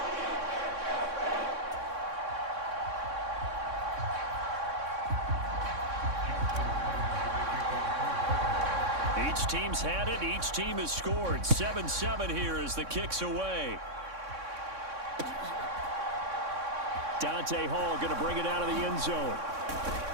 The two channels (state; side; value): late; left; 3.6 ms